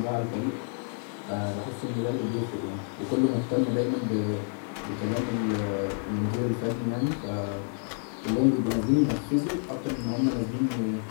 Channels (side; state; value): right; silent; 56 dB below the other